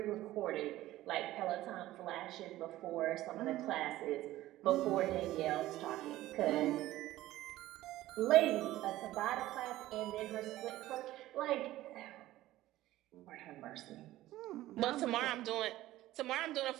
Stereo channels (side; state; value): left; quieter; 15.6 dB